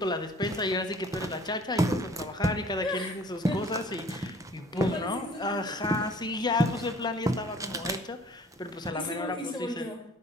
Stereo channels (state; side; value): normal; both; correlation 0.52